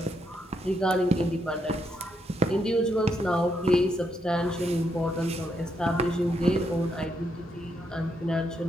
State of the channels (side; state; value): both; normal; correlation 0.78